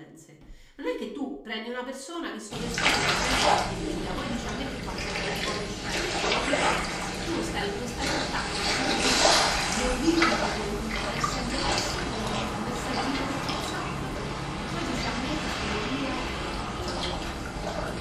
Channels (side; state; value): both; identical; correlation 1.00